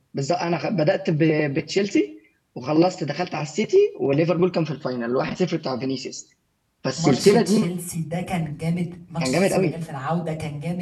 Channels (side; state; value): both; identical; correlation 1.00